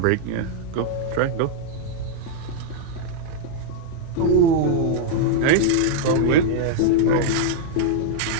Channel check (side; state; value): both; different; correlation -0.01